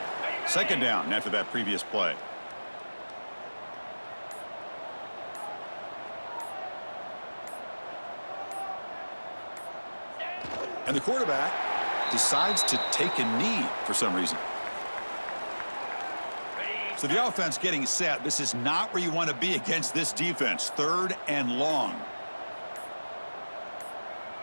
Second down after that previous play. And the quarterback decides to take a knee for some reason. So the offense getting set. This is not where you want to be against this defense. Third and long.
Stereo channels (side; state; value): both; inverted; correlation -1.00